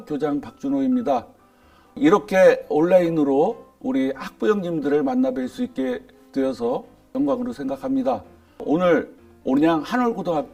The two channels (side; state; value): both; identical; correlation 1.00